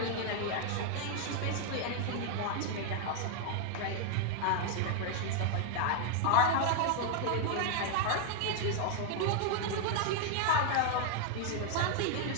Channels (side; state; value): both; different; correlation 0.00